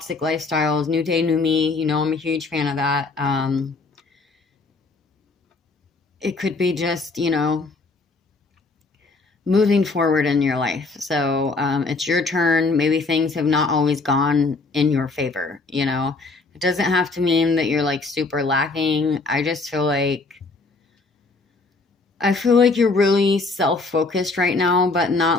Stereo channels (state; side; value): quieter; right; 3.7 dB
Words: lifestyles, new day, new me. I'm a huge fan of that. It could be just, moving forward in your life. So it's your turn. Maybe things have not always gone in your favor. It doesn't have to mean that you're like super lacking. I feel like you're really self-focused right now, but